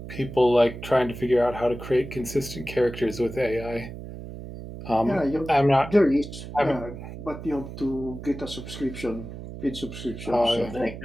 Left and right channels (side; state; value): right; noise; hum, 11 dB below the sound